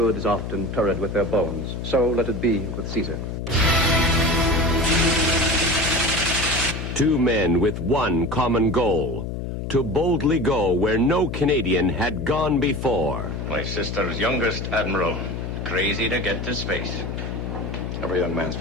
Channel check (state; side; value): noise; left; hum, 6 dB below the sound